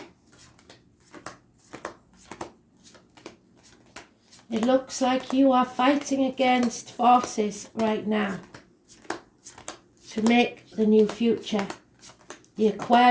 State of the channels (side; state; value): both; identical; correlation 1.00